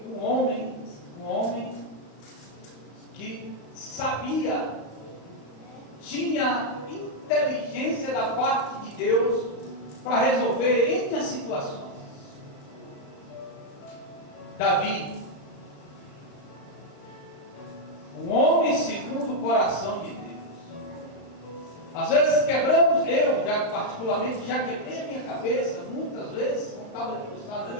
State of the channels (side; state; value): right; late; 35 ms